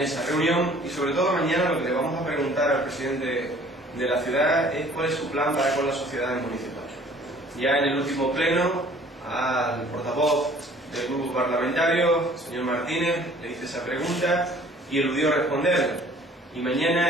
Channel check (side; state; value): both; normal; correlation 0.53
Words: reunión, y sobre todo mañana lo que le vamos a preguntar al presidente de la ciudad es cuál es su plan para con las sociedades municipales. Ya en el último pleno, al portavoz del grupo parlamentario, el señor Martínez, le hice esa pregunta y eludió responderla. Y